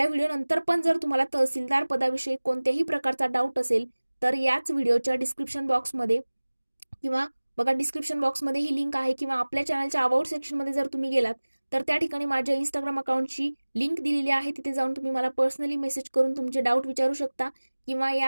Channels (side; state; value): both; inverted; correlation -1.00